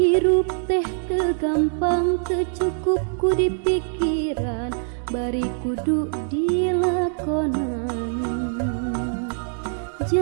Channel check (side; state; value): left; silent; digital silence